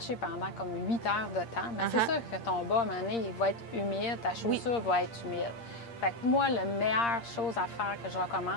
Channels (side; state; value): right; late; 8.6 ms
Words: pendant comme 8 heures de temps, bien, c'est Uh-huh. sûr que ton bas, à un moment donné, il va être humide, ta chaussure va être humide. Fait que moi, la meilleure chose à faire que je